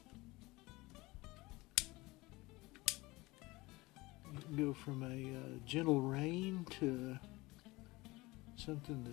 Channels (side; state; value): right; quieter; 21.6 dB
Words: You can go from a gentle rain to something